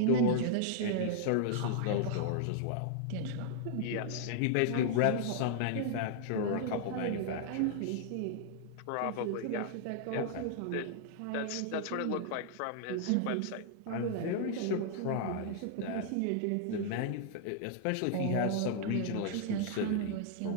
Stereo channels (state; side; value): different; both; correlation -0.01